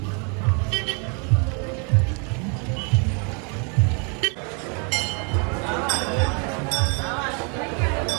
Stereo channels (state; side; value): quieter; left; 36.2 dB